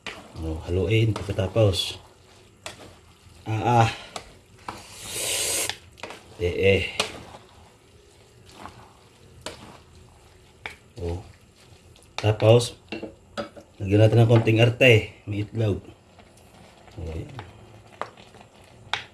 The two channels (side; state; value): both; identical; correlation 1.00